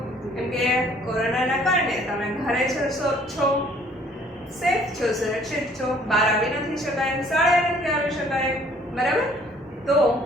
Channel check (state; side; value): normal; both; correlation 0.58